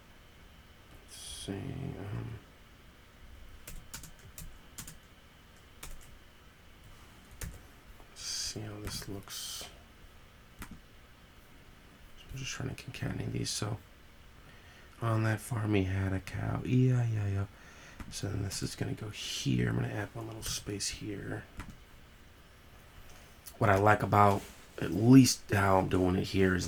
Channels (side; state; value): both; identical; correlation 1.00